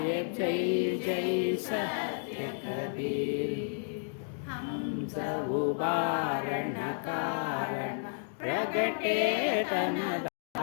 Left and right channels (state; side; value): silent; right; digital silence